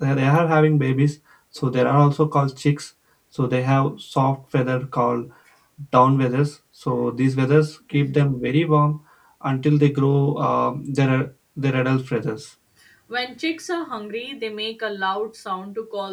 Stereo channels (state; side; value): identical; both; correlation 1.00